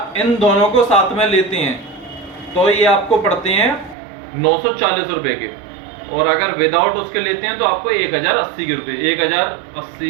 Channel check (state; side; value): drops out; left; at 4.0 s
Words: इन दोनों को साथ में लेते हैं तो ये आपको पड़ते हैं 940 रुपए के, और अगर विदाउट उसके लेते हैं तो आपको 1080 के रुपए